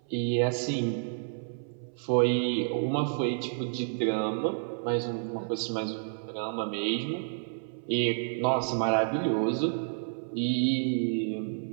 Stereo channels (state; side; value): silent; left; 58 dB below the other